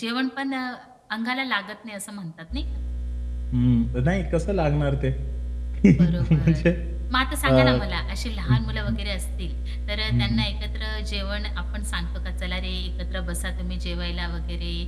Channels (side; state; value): both; identical; correlation 1.00